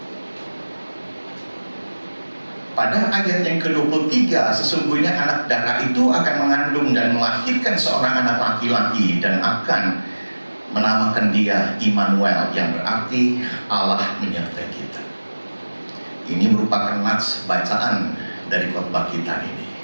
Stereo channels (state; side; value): inverted; both; correlation -1.00